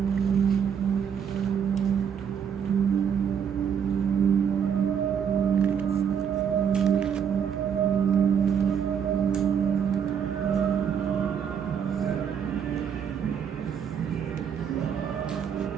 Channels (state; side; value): quieter; left; 7.7 dB